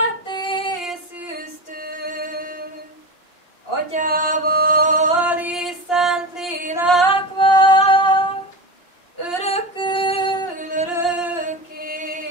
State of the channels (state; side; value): late; right; 2.8 ms